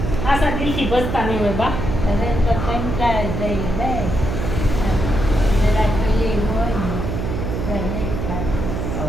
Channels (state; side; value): noise; right; hum, 3 dB below the sound